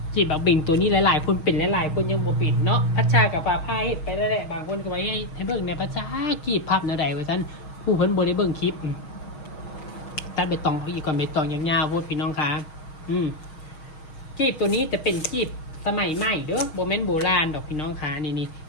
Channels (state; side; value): late; right; 6.3 ms